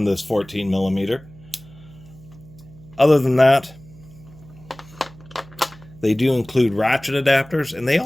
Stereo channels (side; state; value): right; noise; hum, 22 dB below the sound